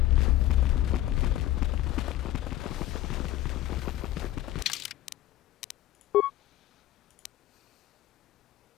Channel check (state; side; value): quieter; right; 14.3 dB